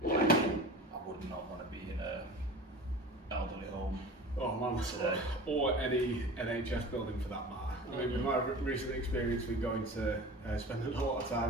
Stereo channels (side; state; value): both; normal; correlation 0.37